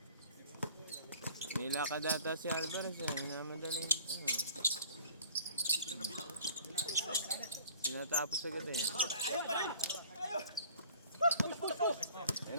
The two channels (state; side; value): inverted; both; correlation -0.50